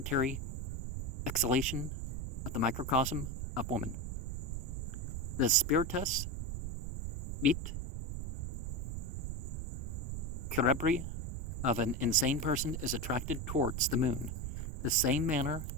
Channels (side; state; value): right; noise; rumble, 3 dB below the sound